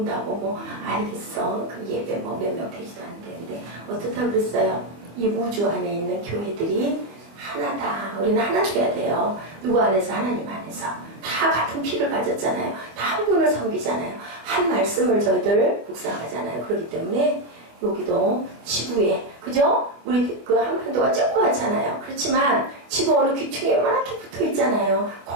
뭐 알겠어. 그 예배 뭐 몇 명 되지도 않는데 어떻다 그랬어요? 이 우주 안에 있는 교회들이 하나다. 우리는 하나 돼야 돼요. 누구 안에서? 하나님 안에서. 다 같은 피를 가졌잖아요. 다 한 분을 섬기잖아요. 한 말씀을 저희들 묵상하잖아요. 그렇기 때문에 여기도 지구에, 그죠? 우리 그 한반도가 조그맣잖아요. 그렇지만 지구 어느 귀퉁이에 요만하게 붙어 있잖아요.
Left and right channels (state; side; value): late; left; 25 ms